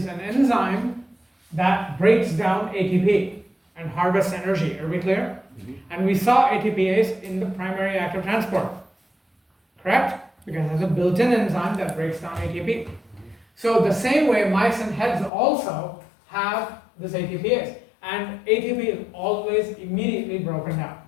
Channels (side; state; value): right; drops out; at 15.3 s